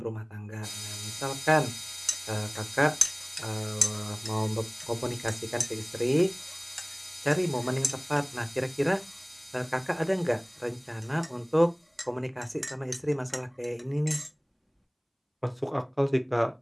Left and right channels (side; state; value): both; identical; correlation 1.00